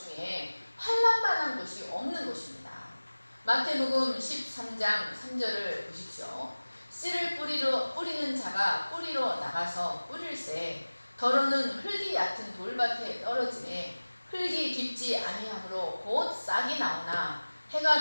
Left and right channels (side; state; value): both; inverted; correlation -1.00